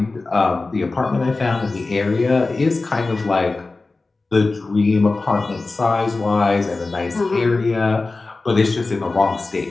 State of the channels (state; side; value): quieter; right; 3.5 dB